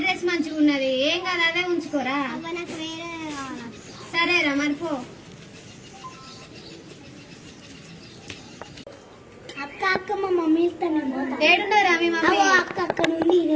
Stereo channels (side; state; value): both; identical; correlation 1.00